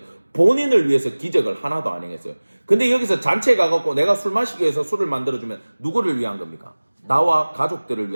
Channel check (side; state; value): both; inverted; correlation -1.00